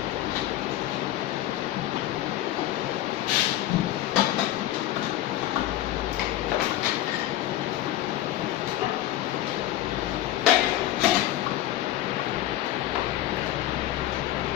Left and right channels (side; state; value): right; quieter; 14.0 dB